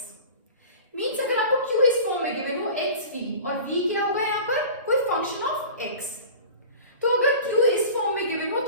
Means अगर आपको q इस form में given हो xv और v क्या होगा यहाँ पर कोई फंक्शन ऑफ x, तो अगर q इस फॉर्म में गिवन हो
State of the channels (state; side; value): inverted; both; correlation -0.39